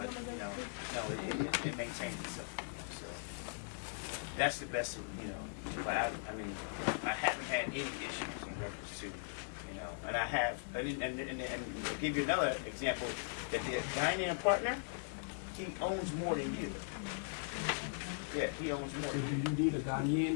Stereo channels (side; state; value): right; silent; 52 dB below the other